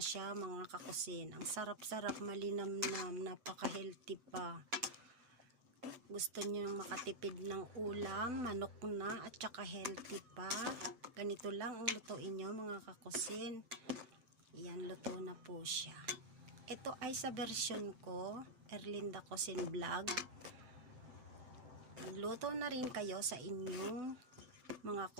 mga kakusin. Ang sarap-sarap, malinamnam, napaka-healthy pa. Gusto nyo makatipid ng ulam, manok na at tsaka healthy pa. Ganito lang ang lutuin nyo mga kakusin. Yan, luto na po siya. Ito ay sa version ko, Erlinda Cuisine Vlog. Magluto na rin kayo sa inyong mga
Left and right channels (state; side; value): late; left; 8.8 ms